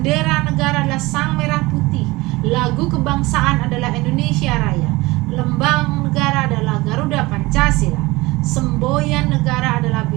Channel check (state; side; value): quieter; left; 21.5 dB